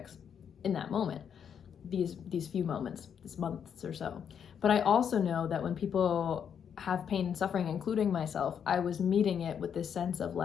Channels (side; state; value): right; quieter; 7.9 dB